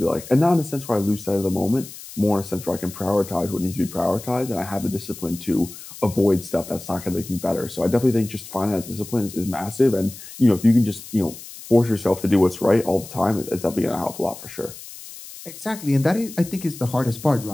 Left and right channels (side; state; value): left; noise; hiss, 15 dB below the sound